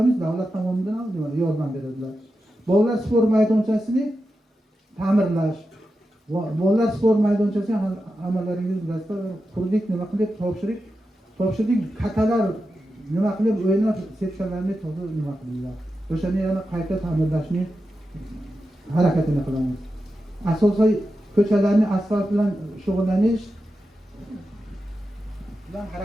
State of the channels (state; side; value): normal; both; correlation 0.90